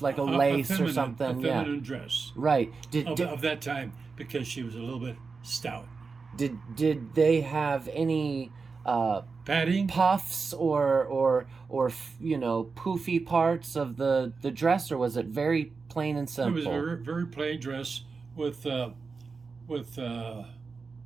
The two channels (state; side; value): quieter; left; 4.7 dB